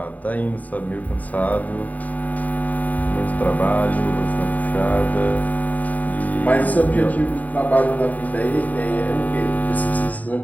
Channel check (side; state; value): right; late; 0.074 ms